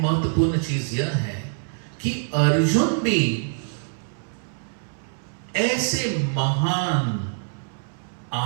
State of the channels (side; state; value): left; silent; 62 dB below the other